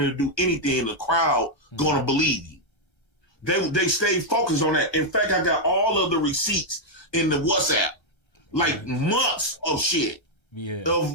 do anything, and the crowd gonna believe you. They stayed focused on that. In fact, I got all of the receipts in the WhatsApp, like months of shit. Yeah.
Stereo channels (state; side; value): late; right; 1.4 ms